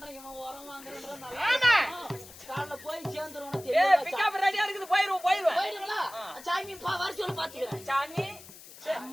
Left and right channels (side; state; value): left; noise; hiss, 18 dB below the sound